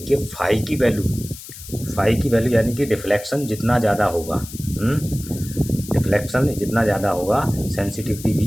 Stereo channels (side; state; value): left; noise; hiss, 14 dB below the sound